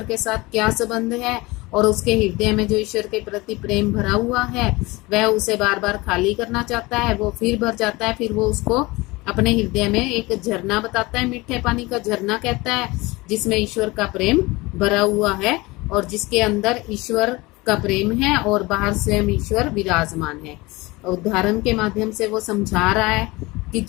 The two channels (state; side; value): quieter; right; 22.5 dB